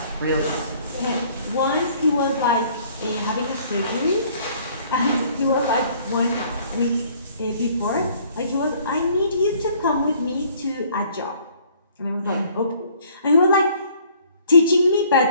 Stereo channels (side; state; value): both; inverted; correlation -0.58